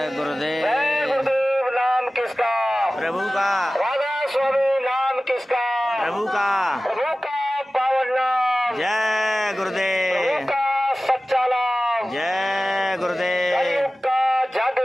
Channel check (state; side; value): normal; both; correlation 0.96